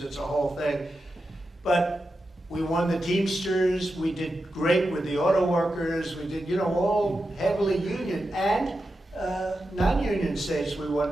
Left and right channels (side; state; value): both; normal; correlation 0.89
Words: it's a whole thing. But we won the Teamsters. We did great with the auto workers. We did, all heavily union and non-union states. We